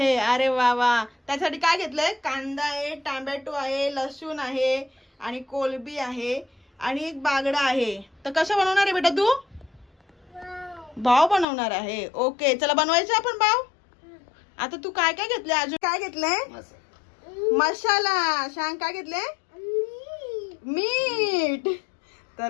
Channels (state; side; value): drops out; right; at 11.5 s